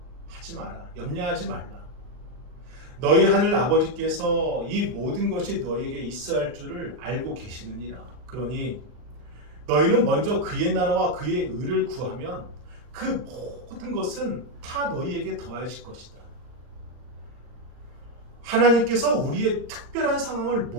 하지 마라. 염려하지 말라. 너희 하늘 아버지께서 이 모든 것이 너희에게 있어야 할 줄을 알고 계시느니라. 그러니 너희는 먼저 그의 나라와 그의 의를 구하면 그 모든 것은 다 너희에게 더하실 것이다. 하나님께서 우리의 특별한 상황을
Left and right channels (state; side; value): late; left; 39 ms